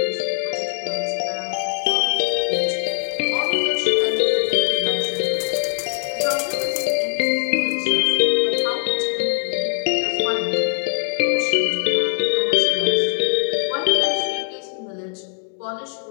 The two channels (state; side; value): silent; right; digital silence